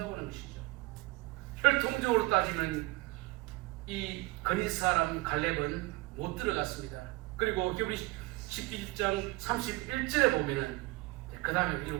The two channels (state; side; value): quieter; left; 21.9 dB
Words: 하는 것이죠. 혈통적으로 따지면 이 그리스 사람 갈렙은 못 들어갔습니다. 그리고 히브리 11장 31절에 보면은 그 다음에